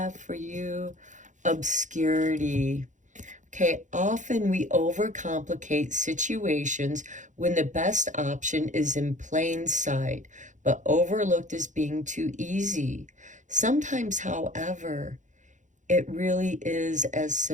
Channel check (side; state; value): left; late; 0.36 ms